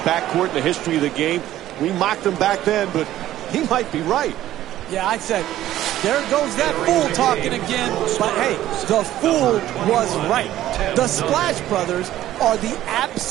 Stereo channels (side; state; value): left; quieter; 13.5 dB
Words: in the history of the game? We mocked them back then, but he might be right. Yeah, I said, there goes that fool talking again. But hey, the fool was right. The Splash Brothers are the